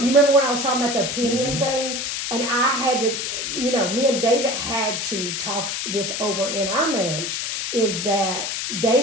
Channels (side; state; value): left; noise; hiss, 3 dB below the sound